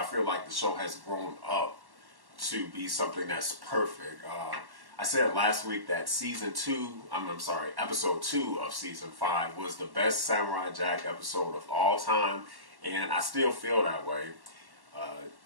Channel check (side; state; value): left; late; 1.1 ms